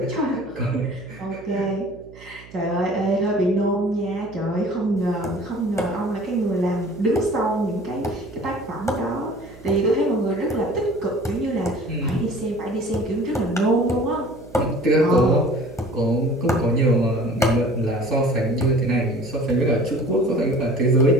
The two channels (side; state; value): right; noise; hum, 20 dB below the sound